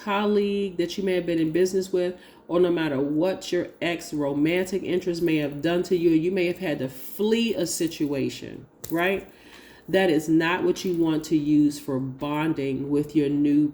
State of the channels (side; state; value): both; identical; correlation 1.00